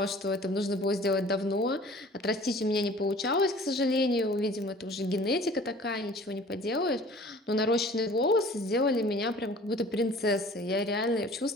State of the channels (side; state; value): both; normal; correlation 0.48